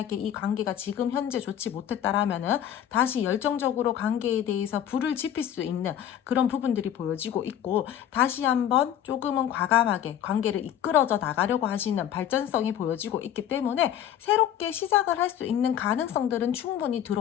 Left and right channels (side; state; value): right; quieter; 10.5 dB